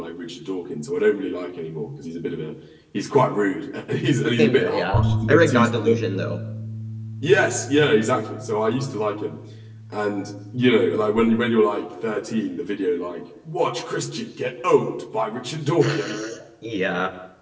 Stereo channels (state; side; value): identical; both; correlation 1.00